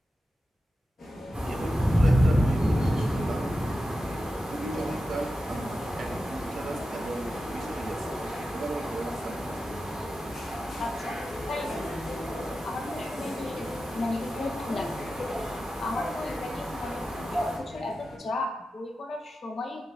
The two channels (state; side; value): normal; both; correlation 0.92